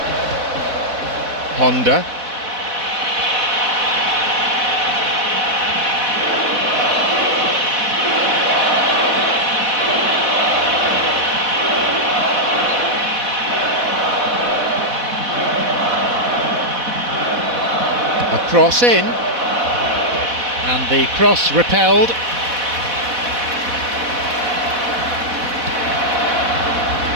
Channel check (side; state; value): left; late; 4.1 ms